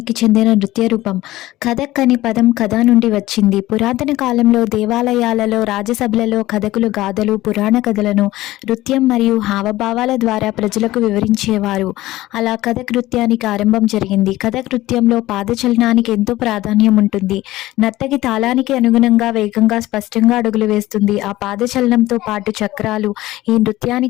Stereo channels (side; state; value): right; quieter; 16.8 dB